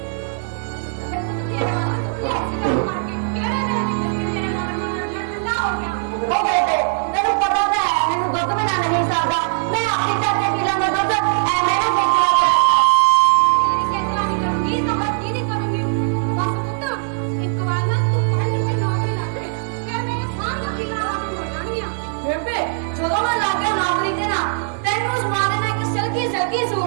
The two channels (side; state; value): left; silent; 66 dB below the other